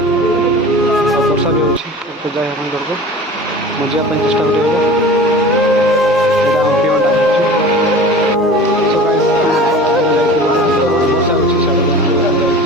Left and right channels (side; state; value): both; normal; correlation 0.38